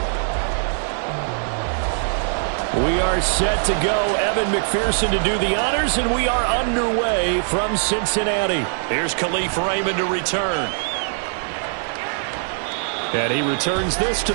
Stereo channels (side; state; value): left; silent; digital silence